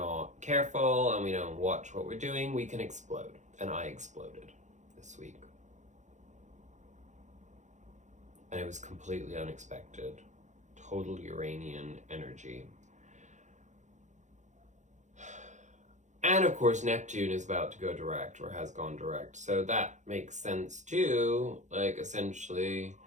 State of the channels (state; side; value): late; left; 0.35 ms